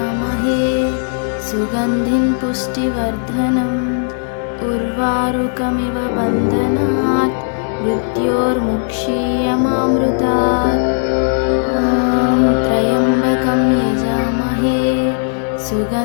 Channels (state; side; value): silent; right; digital silence